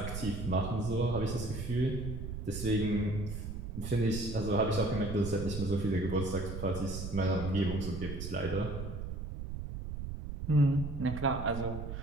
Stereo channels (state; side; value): noise; right; rumble, 6 dB below the sound